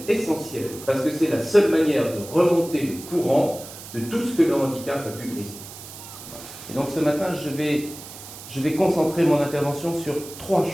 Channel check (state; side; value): noise; right; hiss, 14 dB below the sound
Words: essentiel, parce que c'est la seule manière de remonter le courant de tout ce que le handicap a pu briser. Et donc ce matin, je vais concentrer mon intervention sur 3